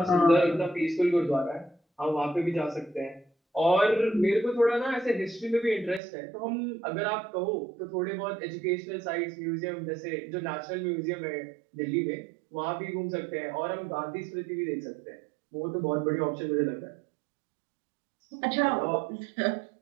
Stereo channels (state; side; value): drops out; left; at 6.0 s